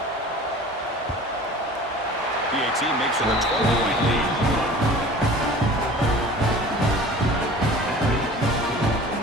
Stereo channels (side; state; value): both; normal; correlation 0.42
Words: PAT makes it a 12-point lead.